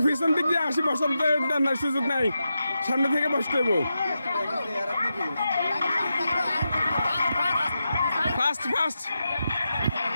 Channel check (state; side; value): inverted; both; correlation -0.88